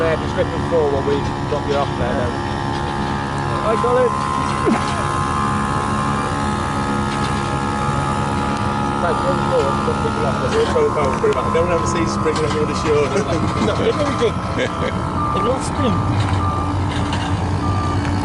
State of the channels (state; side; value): identical; both; correlation 1.00